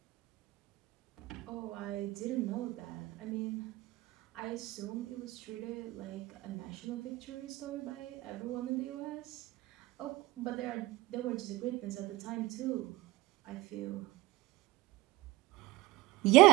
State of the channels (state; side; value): quieter; left; 19.6 dB